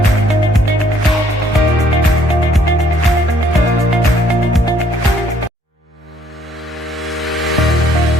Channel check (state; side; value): normal; both; correlation 0.64